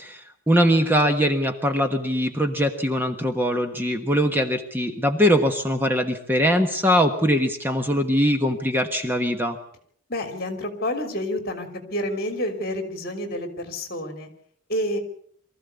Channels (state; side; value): normal; both; correlation 0.58